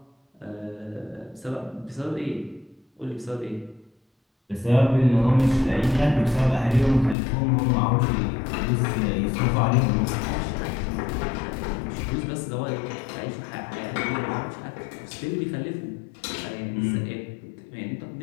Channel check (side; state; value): right; drops out; at 7.2 s